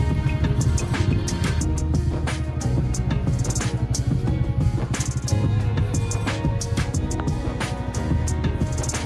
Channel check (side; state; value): both; identical; correlation 1.00